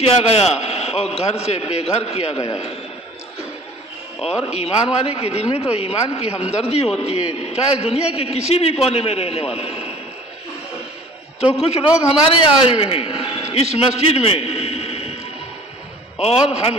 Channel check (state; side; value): normal; both; correlation 0.48